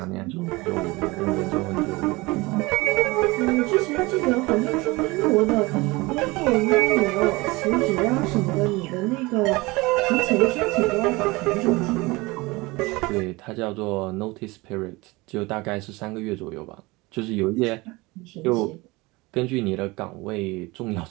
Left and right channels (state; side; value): quieter; left; 23.1 dB